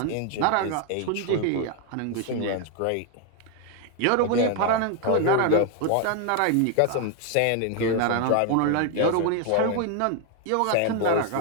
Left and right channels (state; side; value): different; both; correlation 0.00